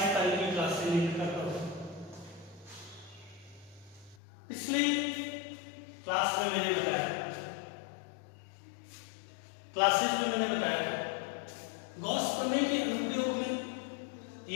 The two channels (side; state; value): right; drops out; at 4.2 s